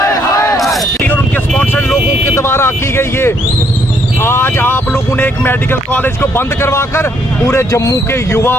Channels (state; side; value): normal; both; correlation 0.70